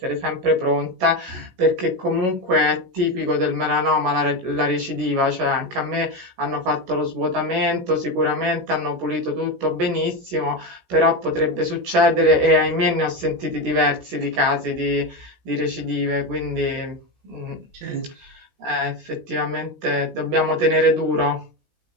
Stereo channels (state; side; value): late; left; 16 ms